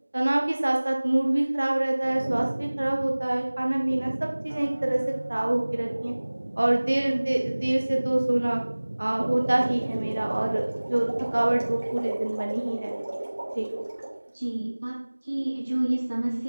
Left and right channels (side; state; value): both; inverted; correlation -1.00